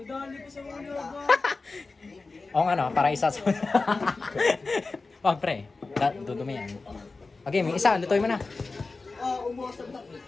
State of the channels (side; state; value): right; quieter; 3.8 dB